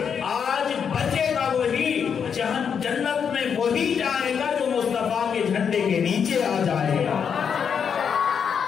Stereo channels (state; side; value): quieter; right; 7.1 dB